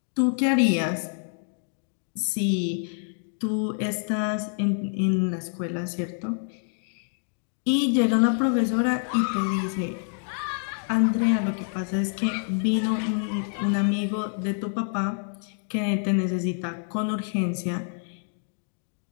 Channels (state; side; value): silent; right; 59 dB below the other